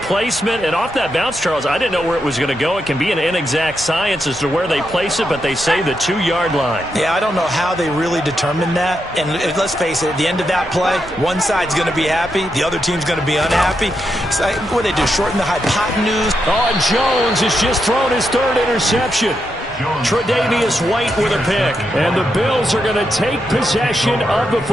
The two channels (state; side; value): normal; both; correlation 0.84